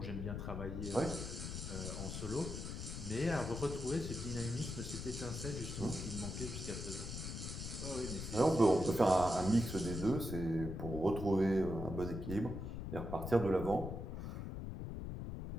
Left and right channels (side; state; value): left; noise; rumble, 6 dB below the sound